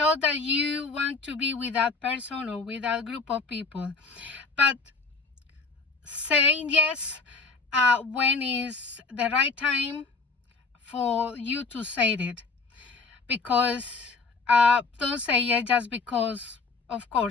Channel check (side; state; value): right; quieter; 4.1 dB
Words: that you want to be with that person or with that group of people. But saying yes when is the right time for you to say it. Because don't say yes just because, of